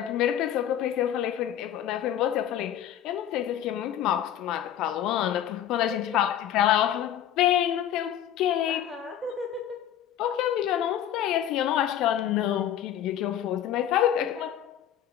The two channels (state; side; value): quieter; right; 10.6 dB